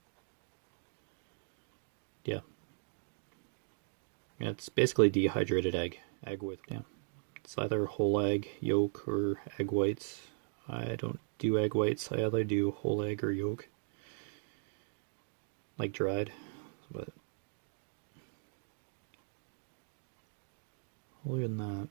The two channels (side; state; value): left; silent; 53 dB below the other